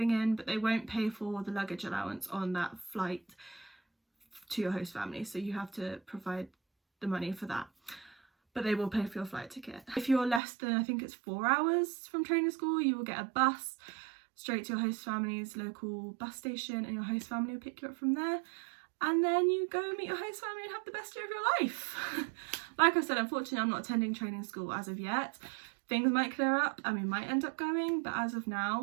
in, but they won't pay for the luggage allowance on that flight to your host family, so you have to provide the money for that. But they will pay for your flight ticket. If you're less than, I think it's 4 hours from training school, you will get a bus straight to your host family's local bus station, and your host family will pick you up from there. And then you go meet your host family and have the best year of your life. Like I said, unfortunately, I'm not attending training school as of yet. Things might clear up and we might end up going, but as of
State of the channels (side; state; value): left; drops out; at 10.4 s